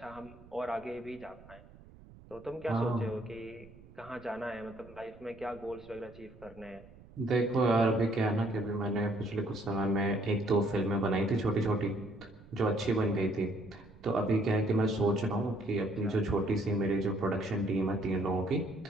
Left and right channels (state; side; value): noise; right; rumble, 22 dB below the sound